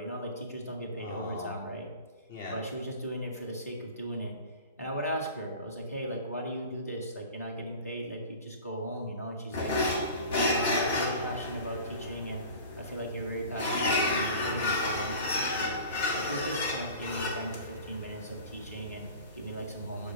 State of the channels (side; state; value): both; inverted; correlation -0.39